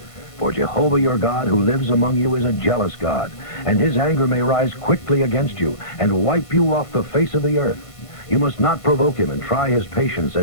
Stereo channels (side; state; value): right; late; 1.5 ms